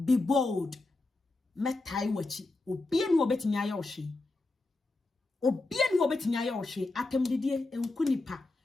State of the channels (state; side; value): quieter; right; 3.1 dB